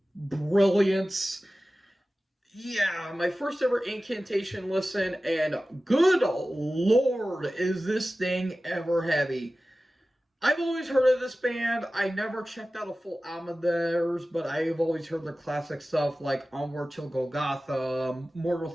brilliance. Yeah, my first ever Incantation listen, and good lord, is this thing ever heavy. I've always heard of this band. I never checked out a full album of theirs, but I've always heard their classic stuff like Onward Till Golgotha, Mortal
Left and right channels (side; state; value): both; normal; correlation 0.96